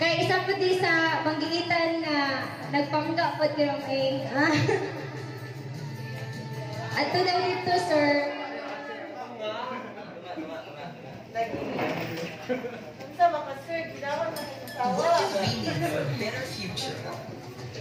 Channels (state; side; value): identical; both; correlation 1.00